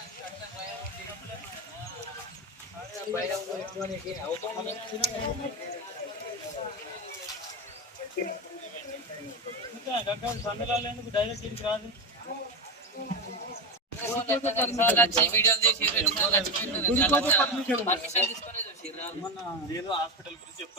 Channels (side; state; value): both; normal; correlation 0.16